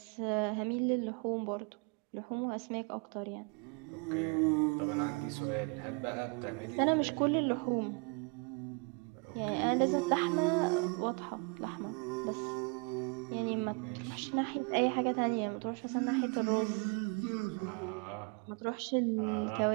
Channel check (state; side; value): quieter; left; 33.6 dB